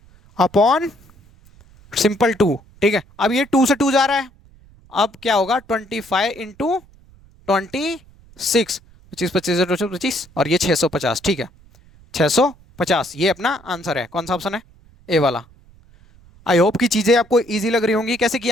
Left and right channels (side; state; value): right; noise; rumble, 27 dB below the sound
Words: अपॉन सिंपल 2, ठीक है। अब ये 2 से 2 जा रहा है, अब क्या होगा 25 × 26, 25 25 25 और ये 650, ठीक है 650। ये अपना आंसर है, कौन सा ऑप्शन है, ए वाला। आई होप की चीजें आपको इजी लग रही होंगी। कैसे